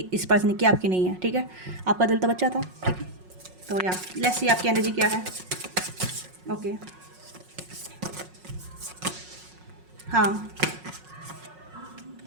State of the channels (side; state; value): left; late; 5.5 ms